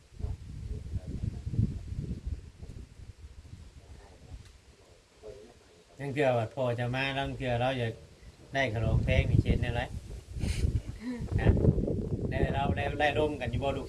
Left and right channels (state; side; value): identical; both; correlation 1.00